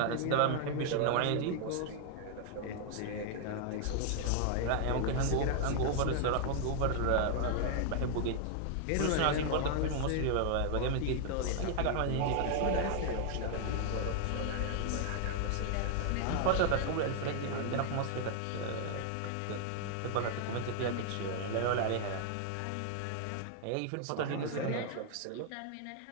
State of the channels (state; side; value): different; both; correlation 0.00